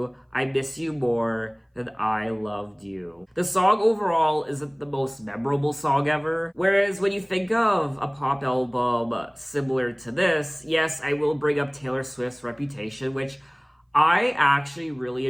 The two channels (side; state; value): both; identical; correlation 1.00